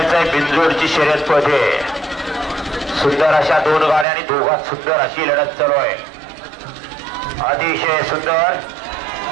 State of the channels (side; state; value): left; drops out; at 4.0 s